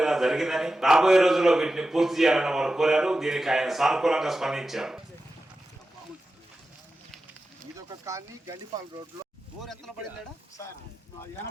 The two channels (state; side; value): normal; both; correlation 0.93